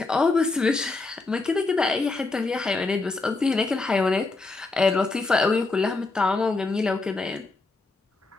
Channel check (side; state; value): right; quieter; 3.5 dB